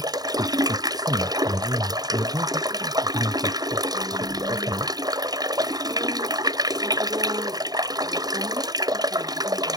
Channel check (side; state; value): left; late; 0.19 ms